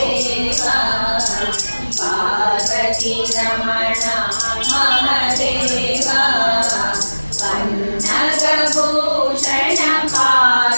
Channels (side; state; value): both; inverted; correlation -1.00